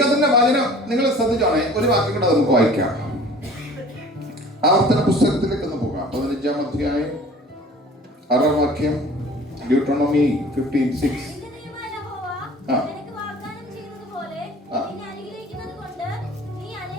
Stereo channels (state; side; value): normal; both; correlation 0.47